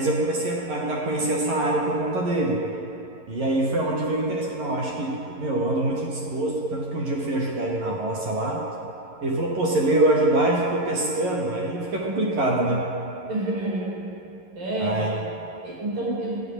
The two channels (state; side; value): late; left; 11 ms